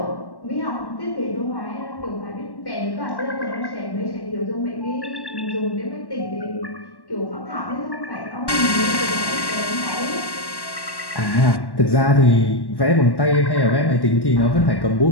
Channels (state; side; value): late; right; 1.1 ms